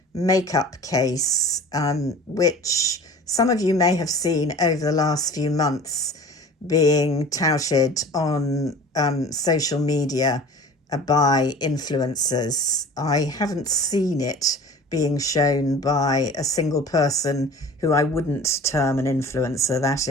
makeup case, which some of you may have seen over the last few months being touted on social media by influencers. I haven't seen it being shown by a single person who I wouldn't term an influencer. That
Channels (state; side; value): normal; both; correlation 0.41